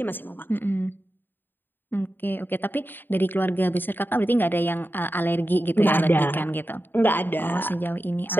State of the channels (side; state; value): right; late; 0.094 ms